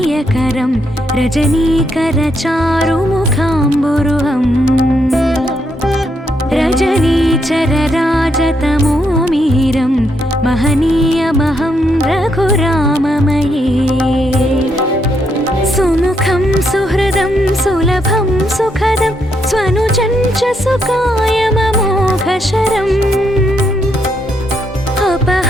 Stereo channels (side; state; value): both; normal; correlation 0.77